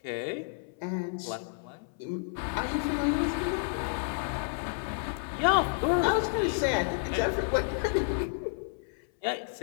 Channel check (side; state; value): right; silent; 57 dB below the other